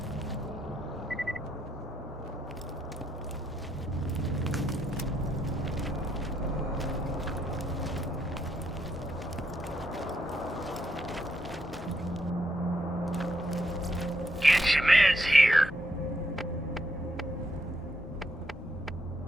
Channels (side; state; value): both; normal; correlation 0.78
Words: Get your meds here.